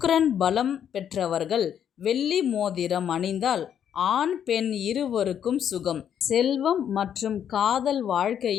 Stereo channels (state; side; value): quieter; right; 9.0 dB